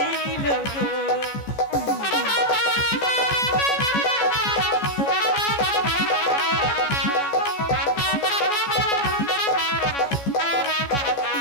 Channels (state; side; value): late; right; 14 ms